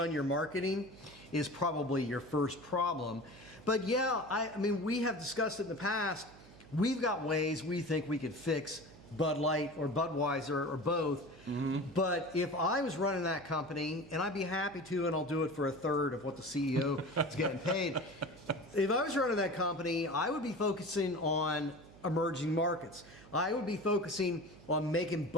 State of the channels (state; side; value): noise; right; hum, 21 dB below the sound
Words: your marketing is probably your first problem. But yeah, I mean, we have discussed it in the past. We've got ways we think we could fix Bud Light or Budweiser or both. But if I was running that company, and I'd be happy to, and I'll do it for a third of what the CEO is getting paid. If I was running that company, I would be focusing on emerging markets. I would be focusing on making